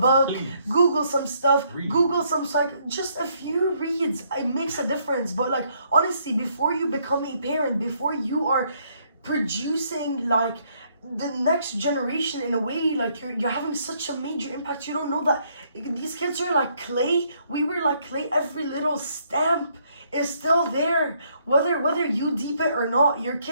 Please. Google some stuff. Read. Google some just a few reads. It makes a difference. But like, honestly, before you become a parent, before you are producing like the next generation in a way, like you're having such a major impact, you don't know that these kids are like clay. We were like clay. Every little stamp is still there, whether you deep it or not, your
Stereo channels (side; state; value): both; inverted; correlation -0.69